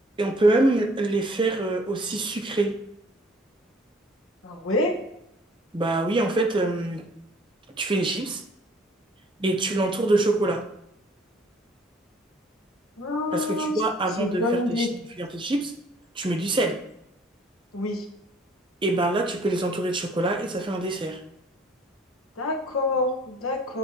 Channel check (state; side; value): normal; both; correlation 0.56